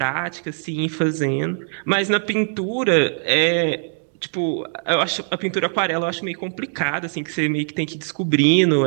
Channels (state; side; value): silent; left; 65 dB below the other